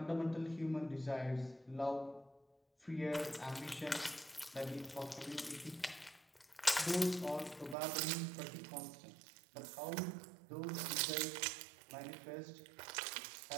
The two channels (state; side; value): drops out; left; at 7.8 s